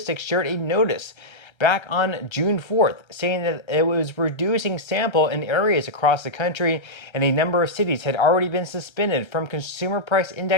shared a notice back on June 4th, saying that it was reducing sample in areas across the country, and a number of cities had already been suspended from consumer price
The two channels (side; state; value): right; late; 1.3 ms